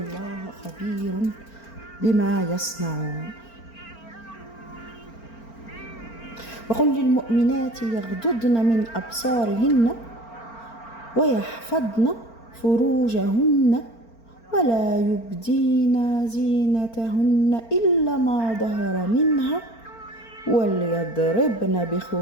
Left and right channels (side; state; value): right; late; 4.4 ms